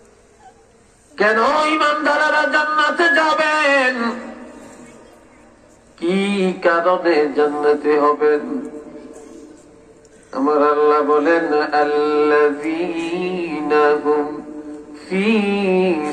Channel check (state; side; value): identical; both; correlation 1.00